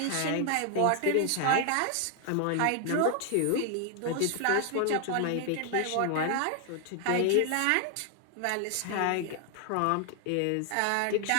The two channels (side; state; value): both; different; correlation 0.00